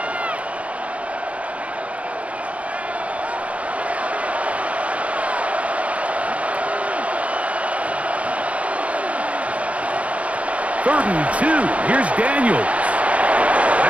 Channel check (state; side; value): late; left; 0.065 ms